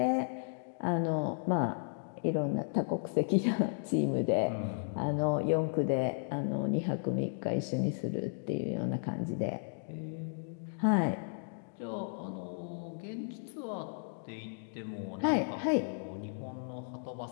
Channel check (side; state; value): right; silent; digital silence